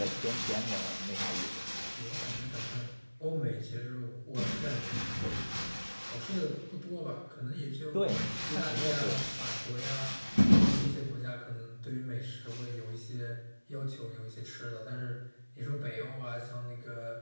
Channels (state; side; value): inverted; both; correlation -1.00